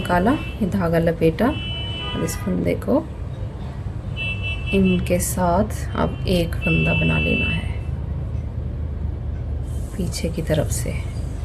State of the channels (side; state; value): both; identical; correlation 1.00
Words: ये धागा लपेटा और इस फंदे को इनके साथ अब एक फंदा बना लेना है पीछे की तरफ से।